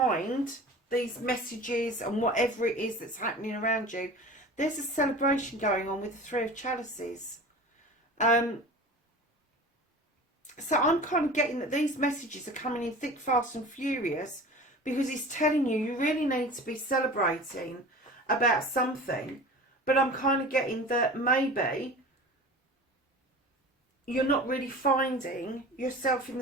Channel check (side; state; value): both; normal; correlation 0.38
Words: these messages and whatever it is that's happening around you, there's a celebration going on with the Three of Chalices. So I'm kind of getting that these messages are coming in thick, fast and furious, because it's telling you you really need to be celebrating about something. But I'm kind of getting that maybe you're not really finding yourself in